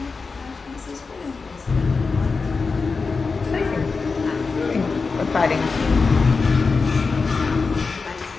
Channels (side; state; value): right; quieter; 4.5 dB